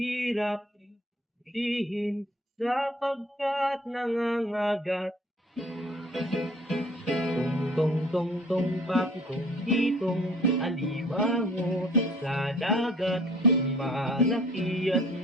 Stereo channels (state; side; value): normal; both; correlation 0.52